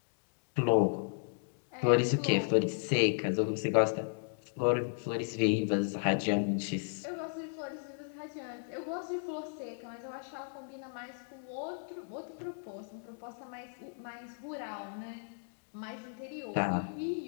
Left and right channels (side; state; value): right; silent; digital silence